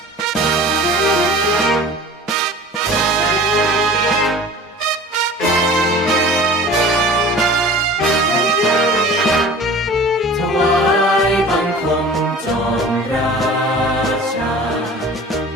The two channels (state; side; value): normal; both; correlation 0.42